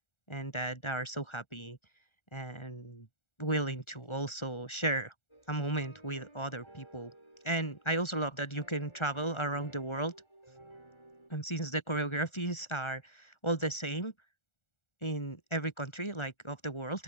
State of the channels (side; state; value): right; late; 1.4 ms